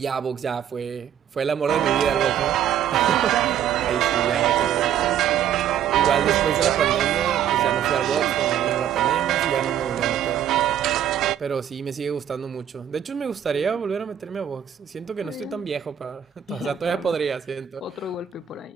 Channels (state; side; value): quieter; left; 9.7 dB